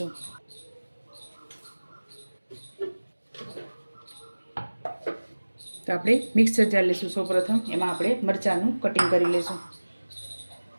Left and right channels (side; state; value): both; inverted; correlation -1.00